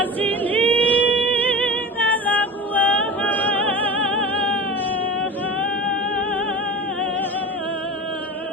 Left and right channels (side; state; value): both; normal; correlation 0.31